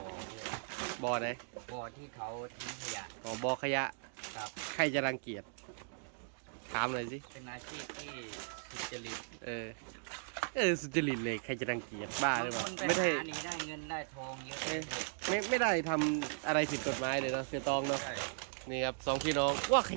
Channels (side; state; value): left; silent; digital silence